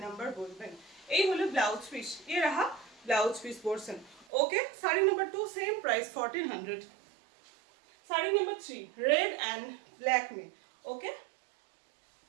number বলবেন। এই হলো ব্লাউজ পিস, ये रहा blouse piece portion. Okay, sari number 2 same price 1400। Sari number 3 red and black में। ओके,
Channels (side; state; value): left; drops out; at 4.2 s